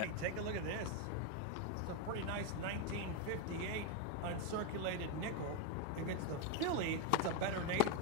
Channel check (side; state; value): both; different; correlation 0.02